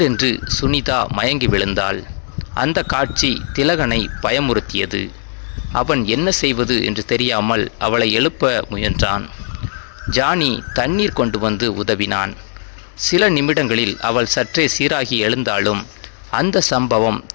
சுனிதா மயங்கி விழுந்தாள். அந்த காட்சி திலகனை பயமுறுத்தியது. அவன் என்ன செய்வது என்று தெரியாமல் அவளை எழுப்ப முயன்றான். ஜானி தண்ணீர் கொண்டு வந்து உதவினான். சில நிமிடங்களில் அவள் சற்றே சீராகி எழுந்தாலும் அந்த சம்பவம்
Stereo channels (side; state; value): right; silent; digital silence